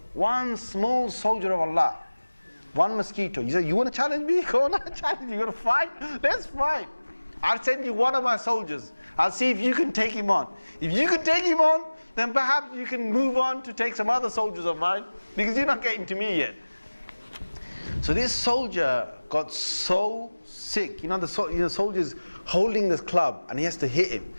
One small soldier of Allah. One mosquito. You say, you want to challenge me? Go on, I'll challenge you. You want to fight? Let's fight. I'll send you one of my soldiers. I'll see if you can take him on. If you can take him on, then perhaps you can move on to take some other soldiers of mine, because you're not getting to me yet. So this soldier got so sick. The soldier's holding this club, and he has to hit him,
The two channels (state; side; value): inverted; both; correlation -1.00